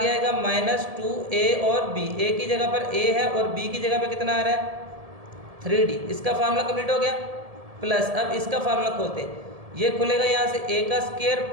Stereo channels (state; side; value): late; left; 1.7 ms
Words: आएगा माइनस 2a और b। a की जगह पर a है और b की जगह पे कितना आ रहा है, 3d। इसका फार्मूला कंप्लीट हो गया। प्लस अब इसका फार्मूला खोलते हैं, ये खुलेगा यहाँ से a का स्क्वायर